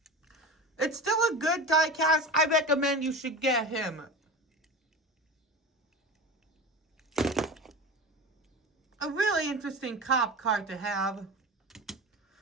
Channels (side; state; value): both; normal; correlation 0.29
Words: It's still a good diecast. I recommend you should get him. A really interesting cop card to have.